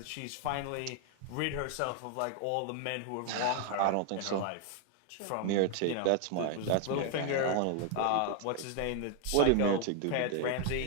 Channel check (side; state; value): both; different; correlation 0.00